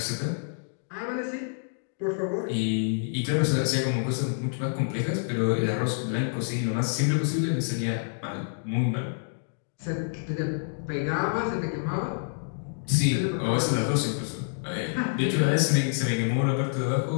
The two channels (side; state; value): right; silent; digital silence